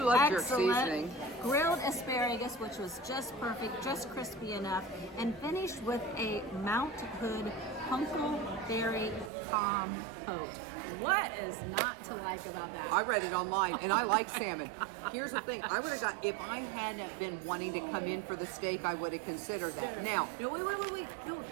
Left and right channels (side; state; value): left; drops out; at 9.3 s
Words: love jerk excellent, seasoning. grilled asparagus, which was just perfect, just crispy enough, and finished with a Mount Hood huckleberry compote. What is not to like about that? I read it online, and I like salmon. Here's the thing: I would have got if I hadn't been wanting to come in for the steak, I would have considered that. Now, No, wait. No,